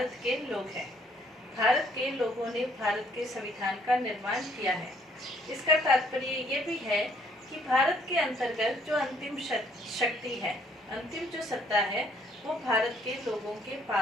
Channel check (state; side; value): normal; both; correlation 0.64